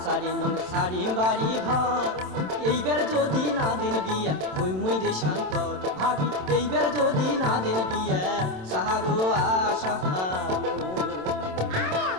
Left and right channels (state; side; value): late; left; 27 ms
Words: সারি নং সারি বাড়ি ঘর এইবার যদি না দিন বিয়া হই মুই দেশান্তর ভাবি এইবার যদি না দিন বিয়া সাহারু আশা আরে